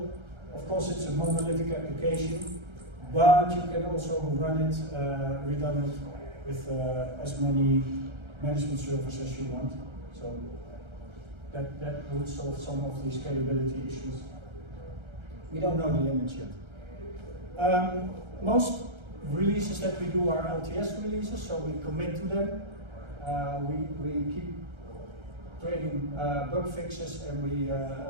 Of course, it's a monolithic application, but you can also run it redundant with as many management servers as you want. So that would solve some of the scalability issues. We don't know the limits yet. Most releases that we do are LTS releases, so we commit to them. We keep creating bug fixes, and we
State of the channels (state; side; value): late; left; 1.3 ms